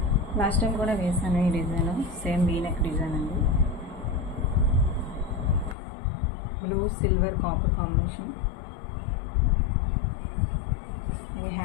లాస్ట్ టైం కూడా వేసాను ఈ డిజైన్, సేమ్ వీనెక్ డిజైన్ అండి. Blue silver copper combination. ఈ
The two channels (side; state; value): right; drops out; at 5.8 s